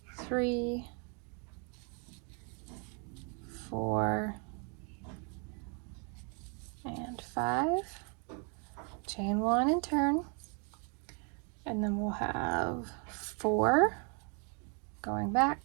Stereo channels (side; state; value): left; quieter; 37.2 dB